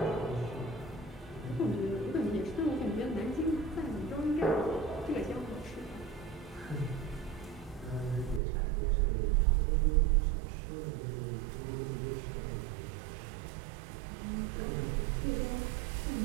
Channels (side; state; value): left; drops out; at 8.4 s